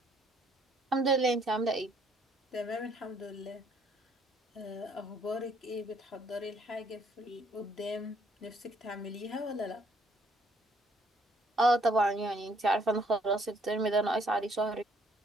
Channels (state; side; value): normal; both; correlation 0.65